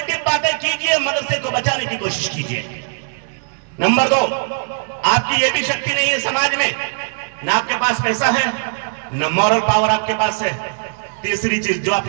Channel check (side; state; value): left; silent; digital silence